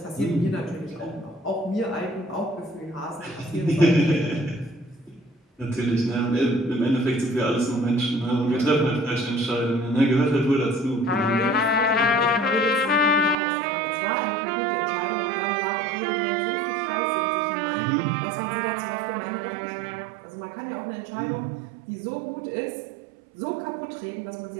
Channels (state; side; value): drops out; left; at 13.4 s